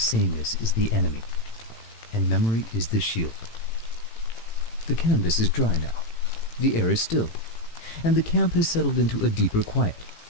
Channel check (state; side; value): late; right; 18 ms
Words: is the enemy, and memory is the shield. The canvas is dry now. The air is still, and the camp has settled into a deeper quiet.